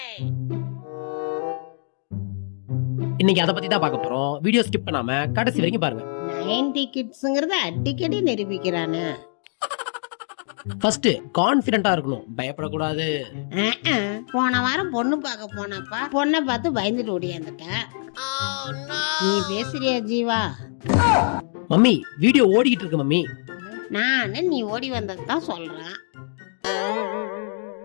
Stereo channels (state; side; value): silent; right; digital silence